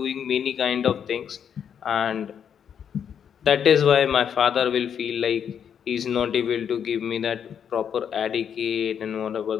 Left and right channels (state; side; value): quieter; right; 8.1 dB